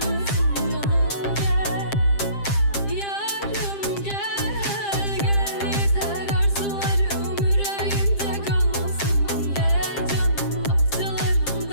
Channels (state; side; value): late; right; 7.5 ms